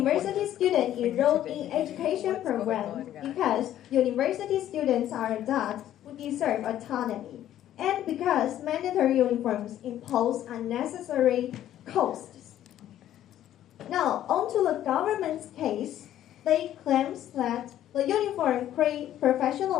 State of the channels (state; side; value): quieter; right; 12.0 dB